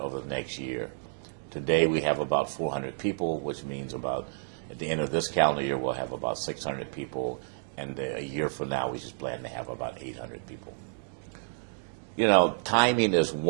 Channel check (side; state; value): left; silent; digital silence